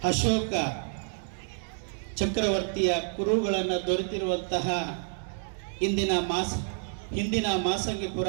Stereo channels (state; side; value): silent; left; digital silence